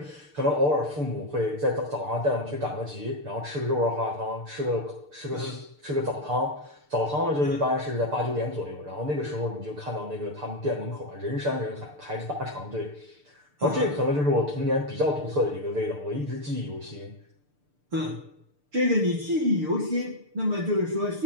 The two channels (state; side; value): late; left; 6.7 ms